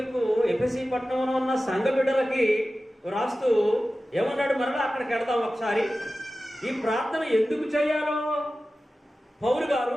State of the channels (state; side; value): normal; both; correlation 0.95